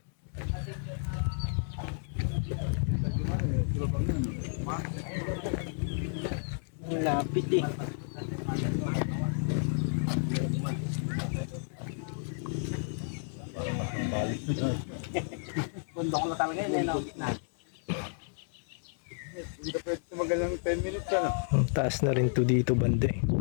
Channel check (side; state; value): right; silent; digital silence